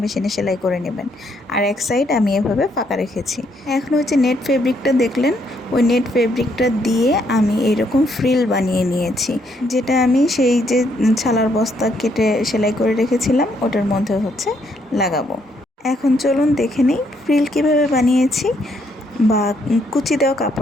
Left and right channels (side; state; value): both; normal; correlation 0.72